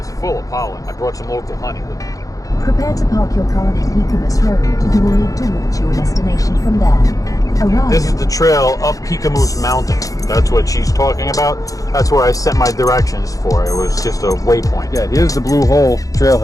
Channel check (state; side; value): late; right; 0.17 ms